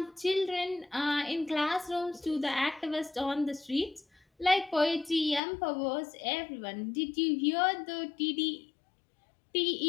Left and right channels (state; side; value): drops out; right; at 5.4 s